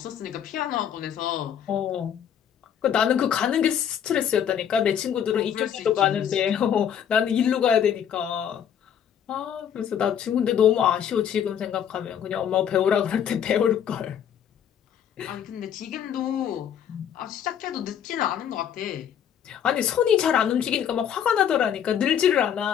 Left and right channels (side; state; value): right; quieter; 9.0 dB